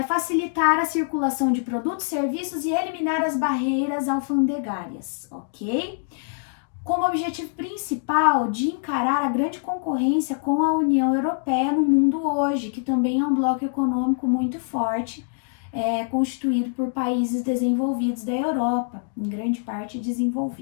facilitar a circulação de produtos, serviços e eliminar as barreiras alfandegárias, ok? Como objetivo principal de encarar a grande concorrência com a União Europeia no mundo hoje, que também é um bloco econômico muito forte, constituído por países desenvolvidos da Europa, em grande parte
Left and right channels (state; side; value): silent; right; digital silence